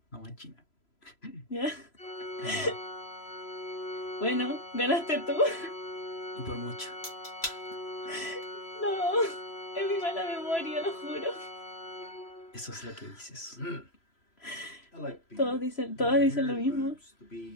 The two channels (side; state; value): right; late; 3.0 ms